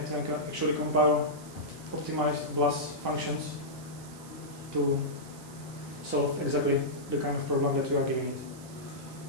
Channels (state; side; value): noise; right; hiss, 19 dB below the sound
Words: can actually compile optimized BLAS functions to solve exactly the kind of problem that you are giving it.